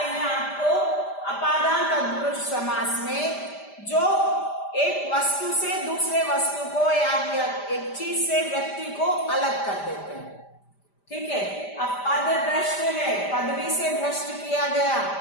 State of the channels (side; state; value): right; late; 5.0 ms